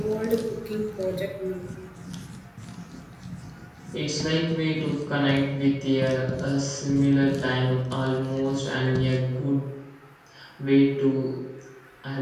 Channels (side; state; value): both; identical; correlation 1.00